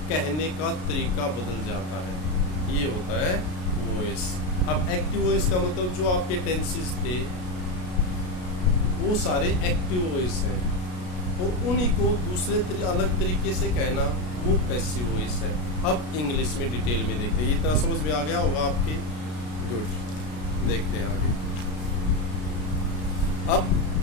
कहने का तरीका बदल जाता है, ये होता है वॉइस। अब एक्टिव वॉइस का मतलब जो आपके टेंसेस थे वो सारे एक्टिव वॉइस हैं और उन्हीं को दूसरे अलग तरीके से कहना वो पैसिव वॉइस है। अब इंग्लिश में डिटेल में देखते हैं, इतना समझ में आ गया होगा आपके, गुड। देखते हैं आगे। अब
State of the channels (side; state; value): right; late; 33 ms